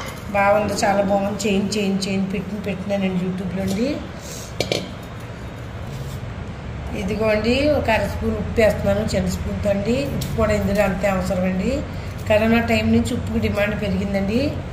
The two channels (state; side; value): identical; both; correlation 1.00